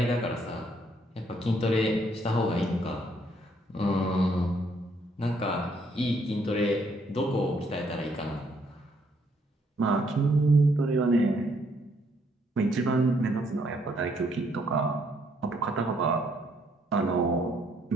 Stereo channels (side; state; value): both; normal; correlation 0.69